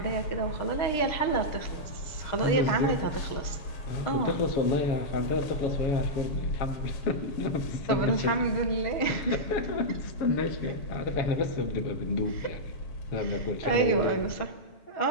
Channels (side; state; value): right; late; 6.4 ms